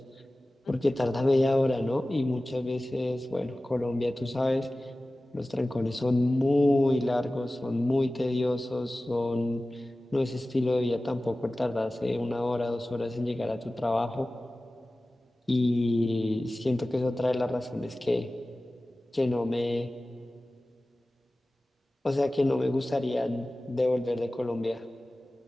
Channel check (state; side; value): normal; both; correlation 0.97